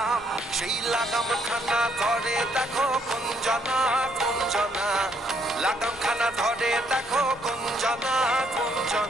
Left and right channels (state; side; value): normal; both; correlation 0.70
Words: সেই লাগাম খানা ধরে দেখো কুঞ্জনা কুঞ্জনা লাগাম খানা ধরে দেখো কুঞ্জনা